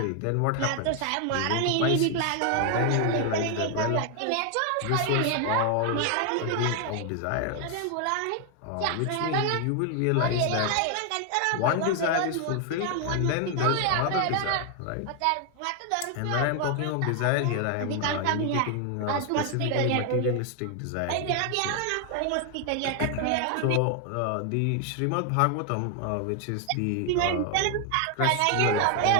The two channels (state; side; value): different; both; correlation 0.00